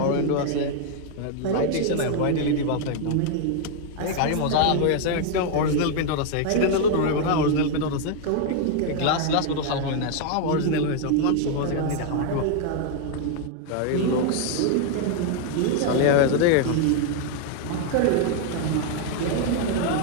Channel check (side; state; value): both; different; correlation 0.00